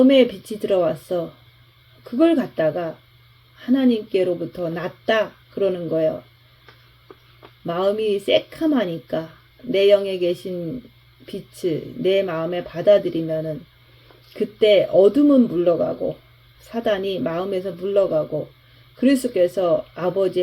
빛이 들어왔어. 그걸 갖다가 하나님께로부터 났다 그러는 거예요. 마음이 새카마니까 내 영에 계신 빛을 내 마음에 받아들이면은 그때 어둠은 물러가고 사단이 마음에서 물러가고 그리스도께서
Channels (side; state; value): both; identical; correlation 1.00